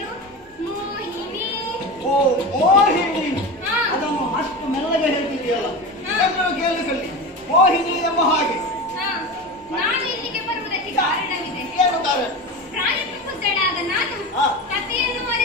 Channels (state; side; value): normal; both; correlation 0.26